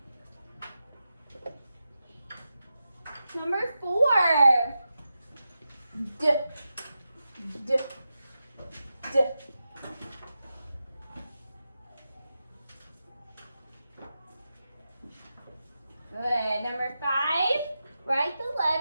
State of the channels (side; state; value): both; inverted; correlation -0.90